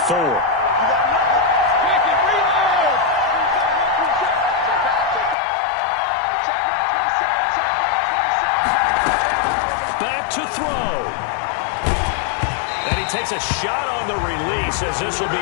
Back to throw. And he takes a shot on the release as this will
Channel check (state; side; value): drops out; right; at 5.4 s